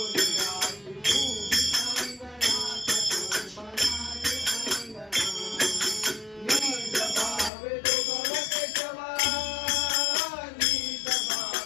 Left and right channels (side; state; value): right; drops out; at 7.5 s